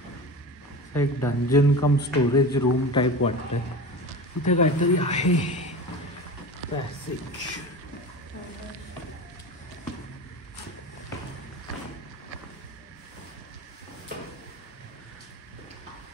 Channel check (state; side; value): normal; both; correlation 0.30